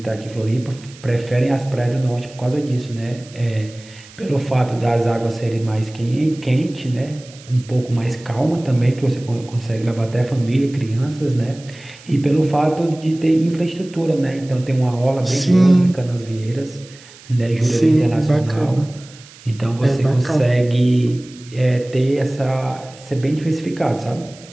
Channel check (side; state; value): right; noise; hiss, 22 dB below the sound